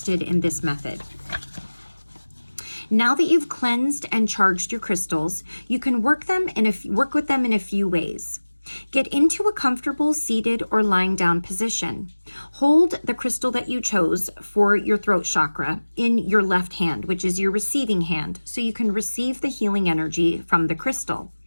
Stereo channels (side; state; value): both; inverted; correlation -1.00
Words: in this method. Now that you've cleansed and charged your crystals, you can work with them in a few ways. Get into a comfortable seated or lying down position. Hold the crystal that you chose for your throat chakra in your left hand, which is your receiving hand, so you can receive the healing energy from the crystal.